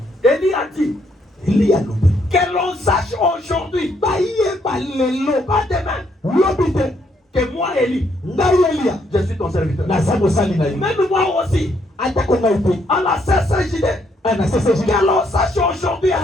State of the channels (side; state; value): both; normal; correlation 0.72